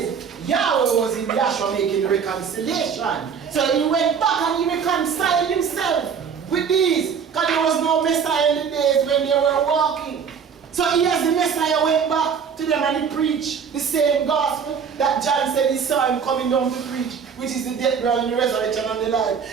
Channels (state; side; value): quieter; left; 6.7 dB